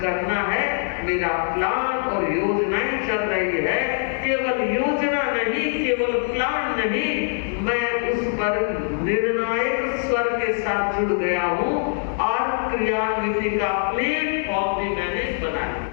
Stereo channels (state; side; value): silent; right; digital silence